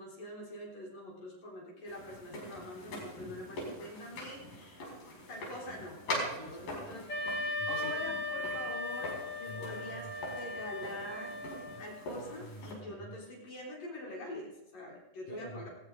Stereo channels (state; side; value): late; right; 11 ms